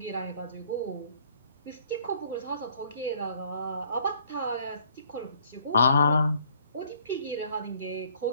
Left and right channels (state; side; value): inverted; both; correlation -0.61